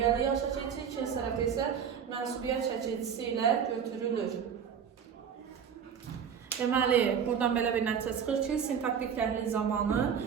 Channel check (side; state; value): left; quieter; 7.6 dB